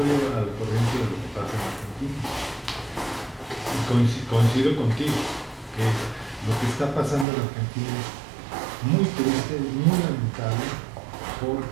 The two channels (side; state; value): left; drops out; at 7.2 s